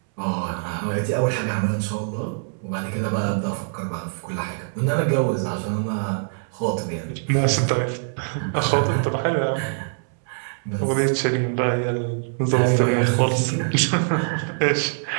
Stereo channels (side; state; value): left; silent; 63 dB below the other